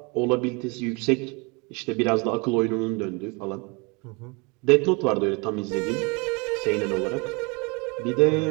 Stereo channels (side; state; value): left; quieter; 29.3 dB